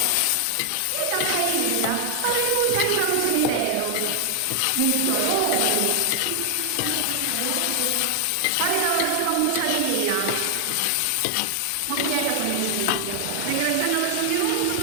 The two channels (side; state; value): both; different; correlation 0.00